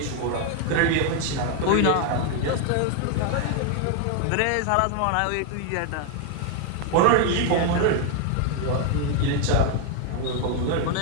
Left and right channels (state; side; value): different; both; correlation 0.00